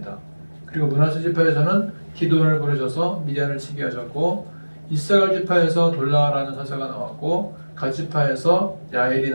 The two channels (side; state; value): both; inverted; correlation -1.00